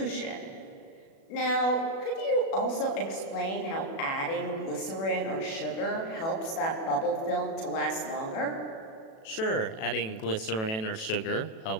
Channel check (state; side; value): late; right; 36 ms